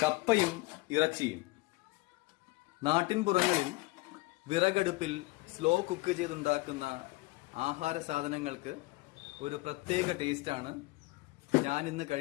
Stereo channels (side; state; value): right; quieter; 22.4 dB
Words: കപ്പയും ഇറച്ചിയും. നാട്ടിൻപുറങ്ങളിൽ വിറകടുപ്പിൽ slow cook ചെയ്തുണ്ടാക്കുന്ന ആഹാര സാധനങ്ങൾക്ക് ഒരു പ്രത്യേക ടേസ്റ്റാണ്. ഞാൻ ഇന്ന്